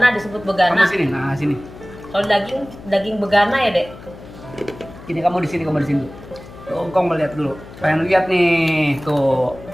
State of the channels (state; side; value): noise; left; hum, 17 dB below the sound